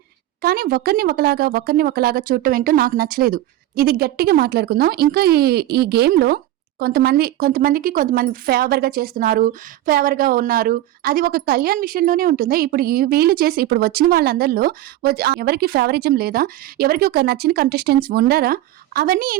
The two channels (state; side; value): quieter; left; 14.4 dB